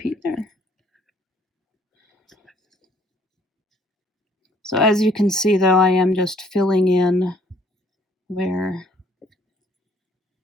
there. So as you can see, though, I am just filling in where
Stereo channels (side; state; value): both; normal; correlation 0.62